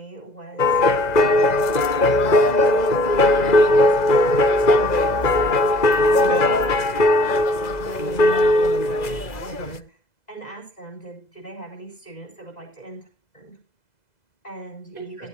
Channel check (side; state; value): right; late; 2.0 ms